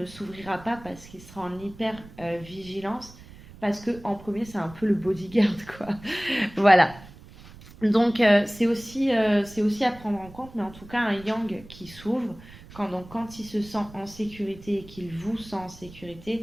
s'ouvrira pas parce qu'il sera en hyper vigilance. Parce que en premier, c'est un peu le bodyguard, quoi. Voilà. Donc, c'est aussi à prendre en compte, mais en tout cas, un yang qui s'ouvre, quand il se sent en sécurité et qu'il vous sent en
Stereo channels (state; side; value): noise; right; rumble, 19 dB below the sound